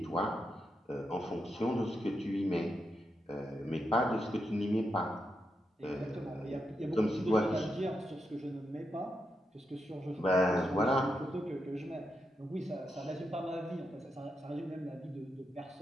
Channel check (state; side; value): normal; both; correlation 0.84